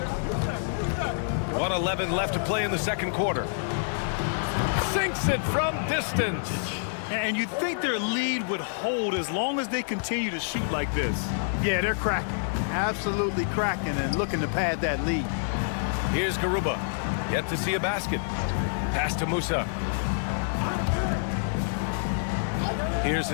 1:11 left to play in the second quarter. Sinks it from distance. And you'd think their lead would hold as long as they continue to shoot like this. Yeah, they're cracking. Absolutely cracking and looking to pad that lead. Here's Garuba. Yet to see a basket. Pass to Musa. Here's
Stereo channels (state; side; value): silent; right; digital silence